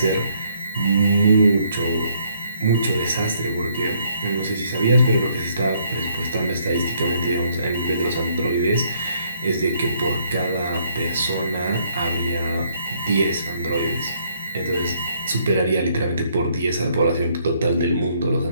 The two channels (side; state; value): both; inverted; correlation -0.68